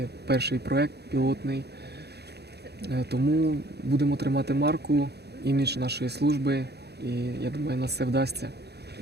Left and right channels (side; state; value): left; late; 0.48 ms